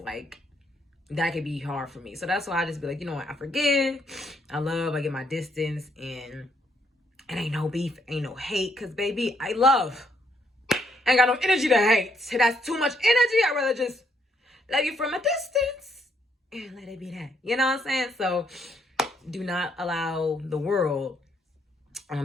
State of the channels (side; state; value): both; normal; correlation 0.72